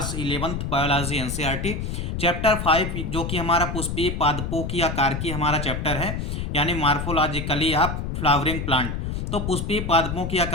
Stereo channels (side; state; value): left; noise; rumble, 3 dB below the sound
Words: 11th biology NCERT chapter 5, जो कि हमारा पुष्पीय पादपों की आकार की हमारा चैप्टर है, यानी मार्फोलॉजिकली ऑफ फ्लावरिंग प्लांट। तो पुष्पीय पादपों की